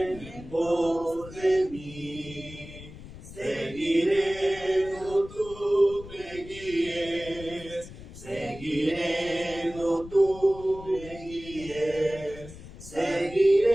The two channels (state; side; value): noise; left; rumble, 15 dB below the sound